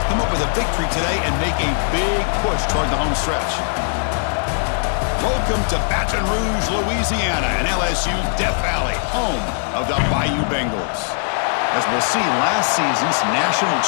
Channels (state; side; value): silent; right; digital silence